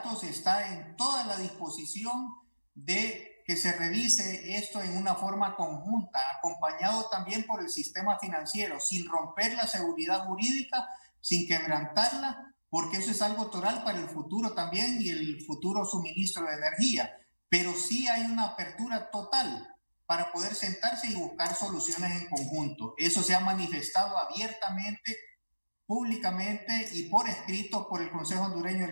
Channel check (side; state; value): both; inverted; correlation -1.00